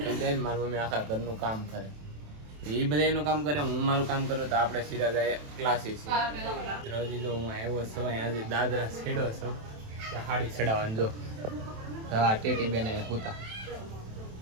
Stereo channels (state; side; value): late; left; 27 ms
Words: કરી દે ને મારી મમ્મી આખા ઘરનું કામ કરે. એ બધા એનું કામ કરે, હું મારું કામ કરું તો આપણે સીધા જાય ક્લાસીસ. હજી જો હું આવ્યો છું આજે દાદરા છેડો છું હાડી ચડાવવાનું. જો હા ટેટી બેને હુતા